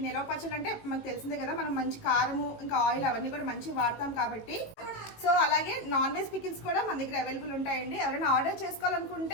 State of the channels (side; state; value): right; late; 18 ms